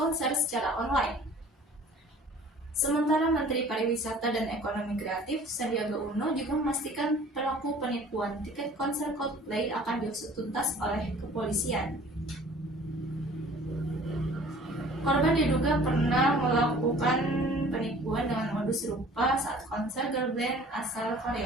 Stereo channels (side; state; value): both; normal; correlation 0.49